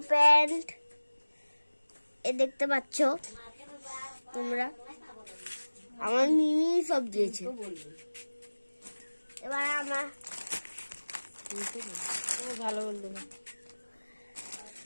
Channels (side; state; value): both; inverted; correlation -1.00